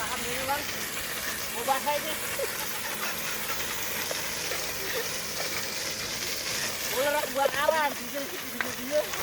dulu bang, mau basah ini. Ular buat aran, dia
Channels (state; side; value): identical; both; correlation 1.00